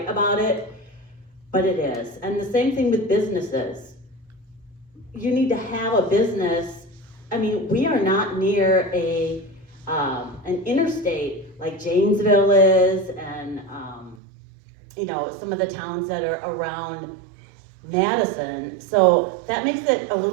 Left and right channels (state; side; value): drops out; left; at 14.2 s